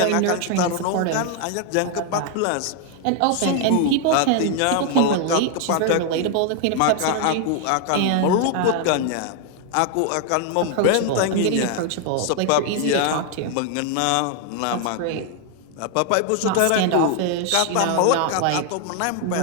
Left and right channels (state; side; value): different; both; correlation 0.00